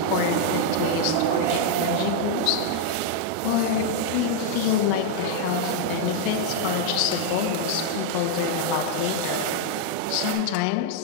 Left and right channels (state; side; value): different; both; correlation 0.00